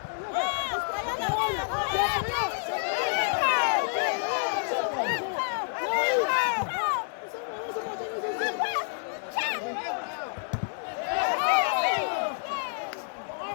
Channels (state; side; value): silent; right; digital silence